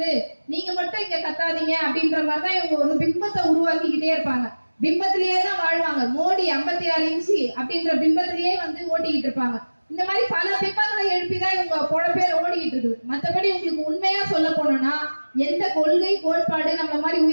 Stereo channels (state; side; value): inverted; both; correlation -1.00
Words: நீங்க மட்டும் இங்க கத்தாதீங்க அப்படின்ற மாதிரிதான் இவங்க ஒரு பிம்பத்தை உருவாக்கிக்கிட்டே இருப்பாங்க. பிம்பத்திலேயே தான் வாழ்வாங்க. மோடி 56 இன்ச்சு அப்படின்ற பிம்பத்திலேயே வந்து ஓட்டிக்கிட்டு இருப்பாங்க. இந்த மாதிரி பல பிம்பங்களை எழுப்பிதான் இவங்க பொழப்பேர் ஓடிக்கிட்டு இருக்குது. மற்றபடி உங்களுக்கு உண்மையா சொல்ல போனோம்னா எந்த கொள்கை கோட்பாடு நம்ம மாதிரி